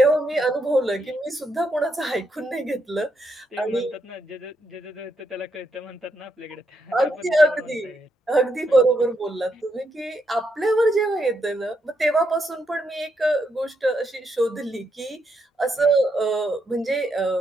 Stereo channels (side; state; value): both; normal; correlation 0.79